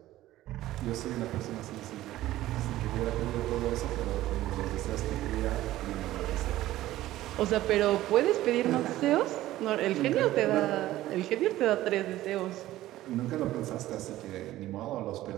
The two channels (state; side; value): quieter; left; 15.3 dB